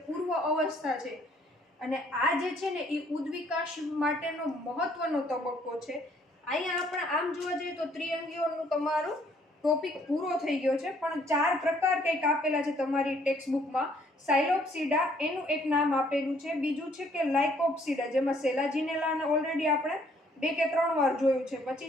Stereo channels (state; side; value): normal; both; correlation 0.64